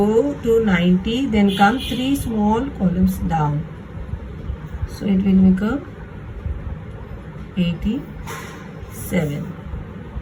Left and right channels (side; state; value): both; identical; correlation 1.00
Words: to 90, then come 3 small columns down, so it will become 87.